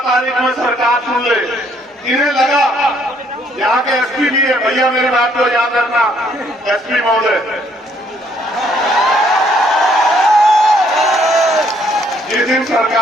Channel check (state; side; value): normal; both; correlation 0.67